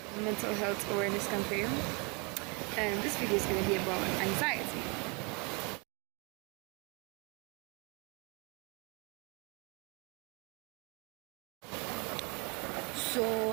mental health awareness campaign, and this video is going to be about anxiety. So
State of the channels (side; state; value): left; quieter; 32.0 dB